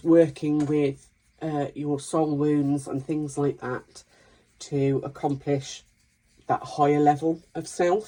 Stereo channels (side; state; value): both; identical; correlation 1.00